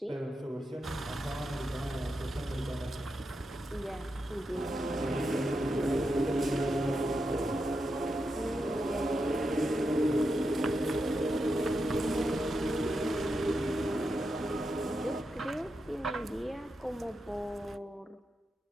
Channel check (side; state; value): both; normal; correlation 0.86